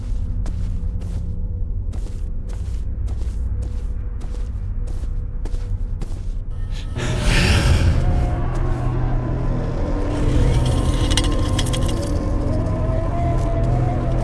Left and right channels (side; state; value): both; identical; correlation 1.00